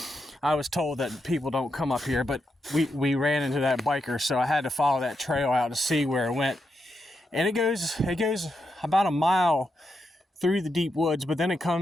I was told that people don't come up here. But we ran into that biker, so I had to follow that trail out to see where it went. And it goes about a mile through the deep woods, but then it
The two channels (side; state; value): both; normal; correlation 0.84